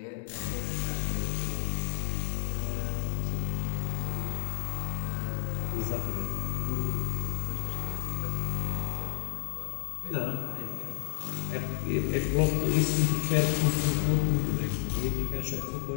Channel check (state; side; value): silent; right; digital silence